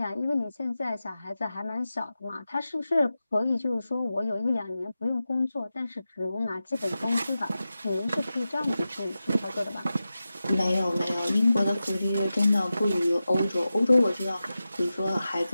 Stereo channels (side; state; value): both; inverted; correlation -0.93